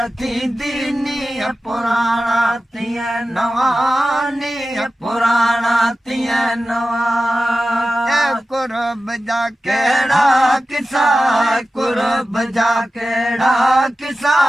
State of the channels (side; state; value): both; normal; correlation 0.94